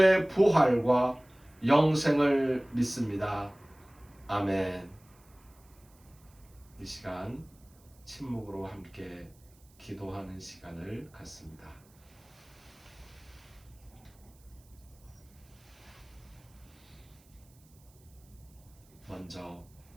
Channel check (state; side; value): noise; right; hiss, 29 dB below the sound